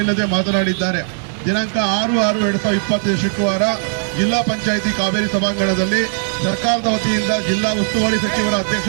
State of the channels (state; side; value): silent; left; 61 dB below the other